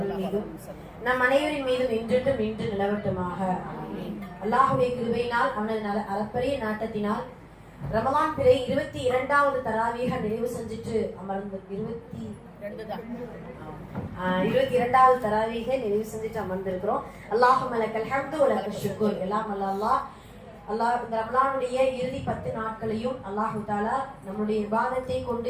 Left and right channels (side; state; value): both; identical; correlation 1.00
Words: மீதும் நம் அனைவரின் மீதும் இன்று நிலவட்டுமாக. அல்லாஹ்வுடைய கிருபையினால் அவனது அளப்பரிய நாட்டத்தினால் ரமலான் பிறை 22வது தராவீஹ நிறைவு செஞ்சுட்டு அமர்ந்து 22வது தராவீஹ நிறைவு செஞ்சுட்டு அமர்ந்திருக்கிறோம். அல்லாஹும்ம லக்கல் ஹம்து வ லக்கல் ஷுக்ர். எல்லாம் அல்லாஹ் இந்த ரமலானுடைய இறுதி 10 நாட்களையும் அல்லாஹ் தஆலா நம்முடைய இபாதத்தை கொண்டு